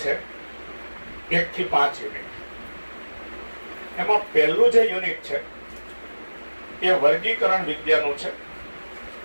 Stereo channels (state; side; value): inverted; both; correlation -1.00